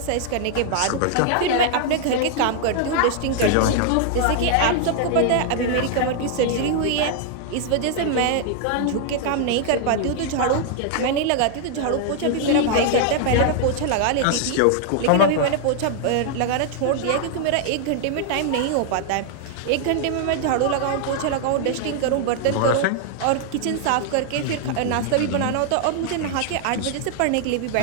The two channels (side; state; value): both; different; correlation 0.00